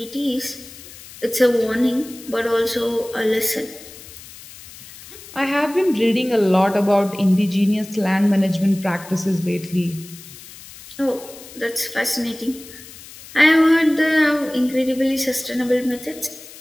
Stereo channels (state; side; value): noise; left; hiss, 18 dB below the sound